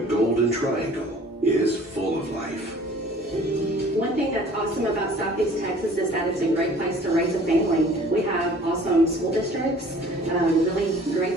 Golden Triangle is full of life. One thing that's awesome about Southeast Texas is that it's a great place to raise a family. We have awesome school districts, really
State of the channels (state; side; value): normal; both; correlation 0.51